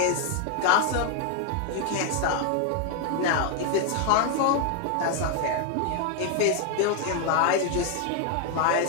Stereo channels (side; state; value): both; different; correlation 0.01